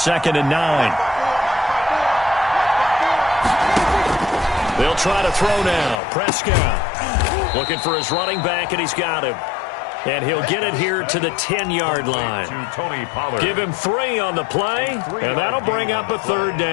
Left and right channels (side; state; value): right; drops out; at 6.0 s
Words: and 9. They'll try to throw now. Prescott looking for his running back, and he's got him. And he'll get it here to the 10-yard line. Give him 3 on the play, and that'll bring up a 3rd